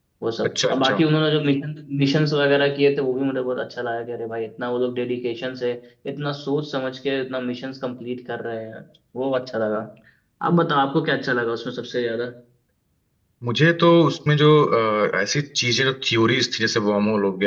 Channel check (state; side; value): identical; both; correlation 1.00